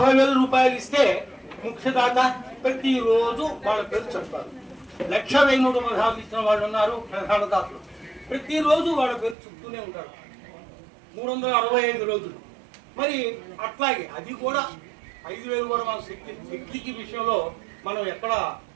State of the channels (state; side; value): drops out; left; at 9.3 s